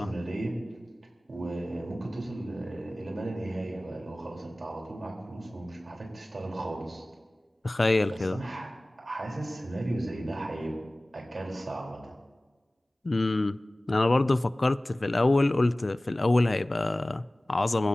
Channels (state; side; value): normal; both; correlation 0.98